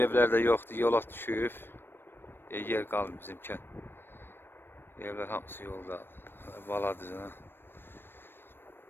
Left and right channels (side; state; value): right; late; 0.10 ms